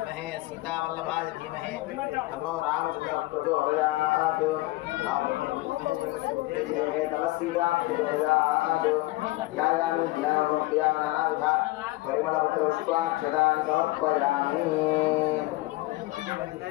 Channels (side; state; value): right; quieter; 20.0 dB